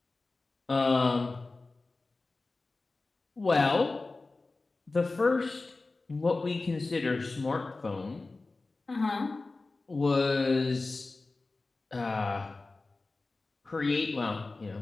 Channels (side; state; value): right; quieter; 3.5 dB